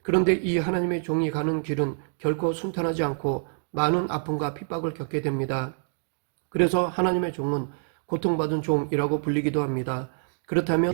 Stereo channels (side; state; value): left; silent; digital silence